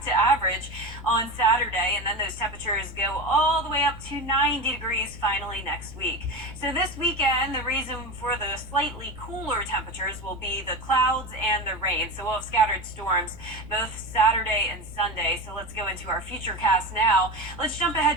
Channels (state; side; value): noise; right; rumble, 19 dB below the sound